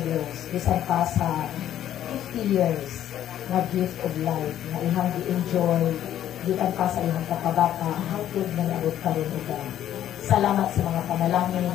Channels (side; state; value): right; quieter; 11.4 dB